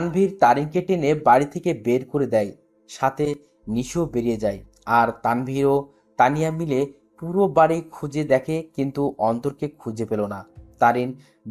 তারিনকে টেনে বাড়ি থেকে বের করে দেয়, সাথে নিশিও বেরিয়ে যায়। আর তানভীর ও তানিয়া মিলে পুরো বাড়ি খুঁজে দেখে, কিন্তু অন্তরকে খুঁজে পেল না। তারিন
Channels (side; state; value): both; identical; correlation 1.00